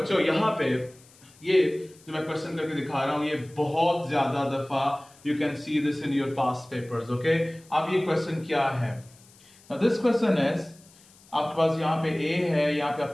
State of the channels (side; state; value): left; noise; hiss, 26 dB below the sound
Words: यहां पे ये जो मैं क्वेश्चन करके दिखा रहा हूं, ये बहुत ज्यादा दफा you can see this in your past papers. Okay, अब ये क्वेश्चन क्या है? Now this question is, आपके पास यहाँ पे A है, यहाँ पे